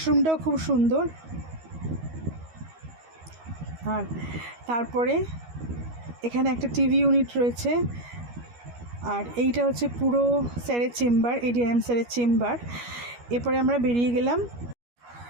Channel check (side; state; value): left; late; 13 ms